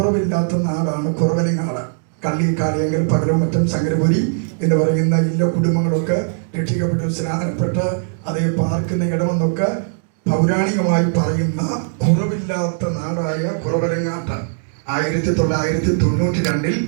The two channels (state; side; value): silent; left; digital silence